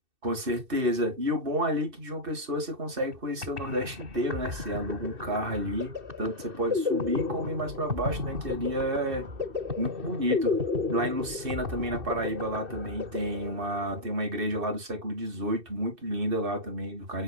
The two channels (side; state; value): left; late; 2.6 ms